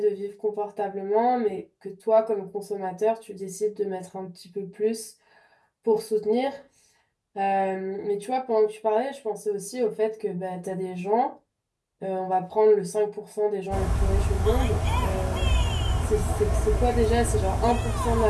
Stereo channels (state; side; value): identical; both; correlation 1.00